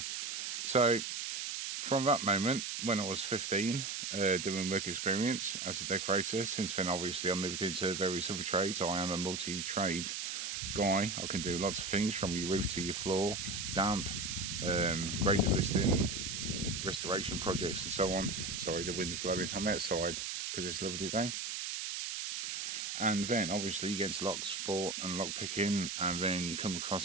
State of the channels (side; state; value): right; noise; hiss, 3 dB below the sound